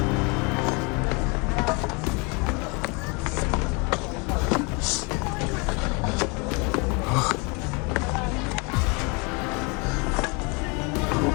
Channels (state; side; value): quieter; right; 30.7 dB